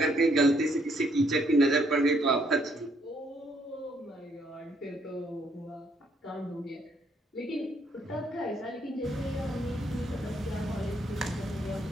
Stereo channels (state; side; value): normal; both; correlation 0.70